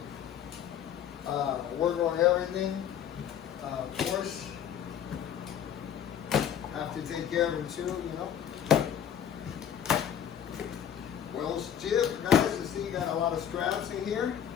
work on everything. Of course, have to take care of him too, you know. Well, Chip, guys, you see you got a lot of straps in here.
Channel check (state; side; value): quieter; right; 9.2 dB